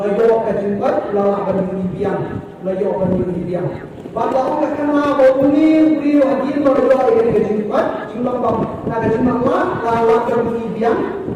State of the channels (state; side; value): identical; both; correlation 1.00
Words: kejumpat, lalu akan dibiang, layu akan dibiang. Bapak orang kenal bahawa ini beriu hadir baru ini kejumpat, jumlah bang, nak kejumpat lalu akan dibiang,